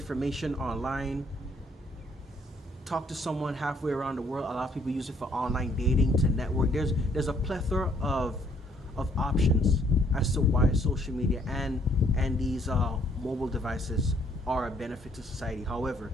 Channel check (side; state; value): both; normal; correlation 0.66